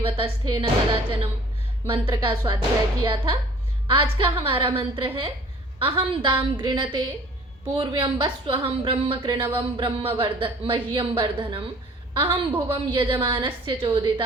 वतस्थे न कदाचनम मंत्र का स्वाध्याय किया था। आज का हमारा मंत्र है अहम दाम गृणते पूर्व्यं वस्वहं ब्रह्म कृणवं ब्रह्म मह्यं वर्धनम अहम भुवम यजमानस्य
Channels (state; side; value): normal; both; correlation 0.51